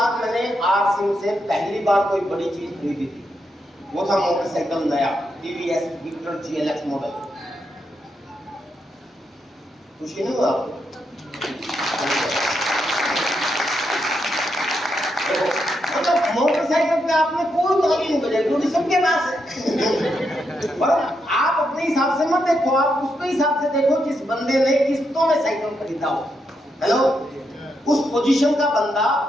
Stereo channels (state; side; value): normal; both; correlation 0.82